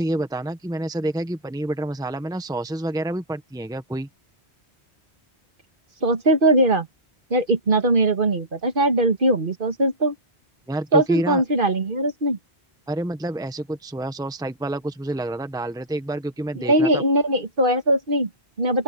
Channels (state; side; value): normal; both; correlation -0.17